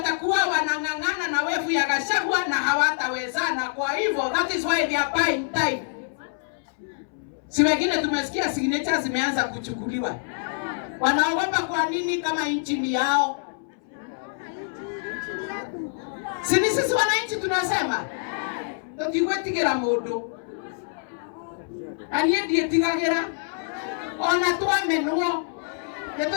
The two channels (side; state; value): right; silent; 61 dB below the other